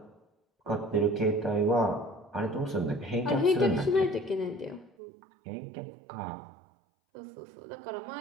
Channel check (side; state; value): left; drops out; at 4.9 s